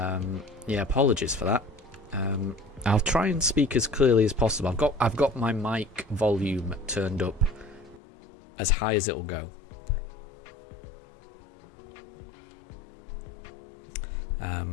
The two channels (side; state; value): right; drops out; at 8.0 s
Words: apologies for that. I'll try and speak as clearly as possible. I've got my mic volume turned up as high as it'll go.